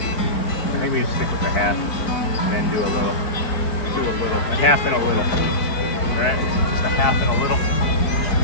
think we just stick with a half and then do a little. Do a little. A half and a little. Right? Just a half and a little.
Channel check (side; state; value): right; late; 4.5 ms